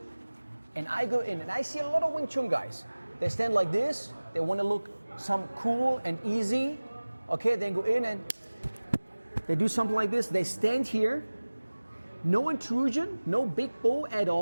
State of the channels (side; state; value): both; inverted; correlation -1.00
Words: and I go in and I see a lot of Wing Chun guys, they stand like this, they want to look some cool and easy, okay? Then go in and they do something like this, they stand here, no intrusion, no big bow at